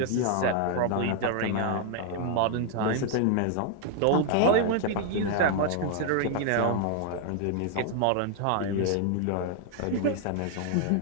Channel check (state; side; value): different; both; correlation 0.00